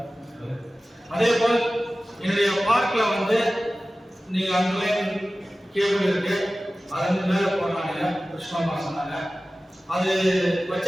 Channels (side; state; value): both; normal; correlation 0.96